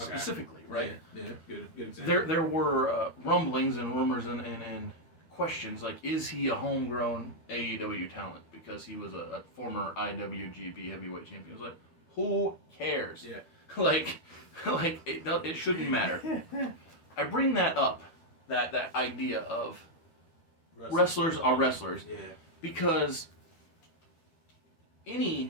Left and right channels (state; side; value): late; right; 12 ms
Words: right? Yeah, good example. There were rumblings and rumors and questions like, is he a homegrown AEW talent because he was a former IWGP heavyweight champion? It was like, who cares? Yeah. like it shouldn't matter. I bring that up, that idea of wrestlers are wrestlers, because